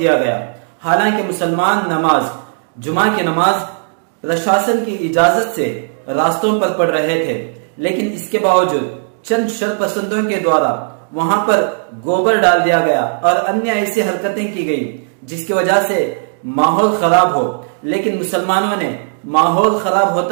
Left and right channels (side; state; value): left; silent; digital silence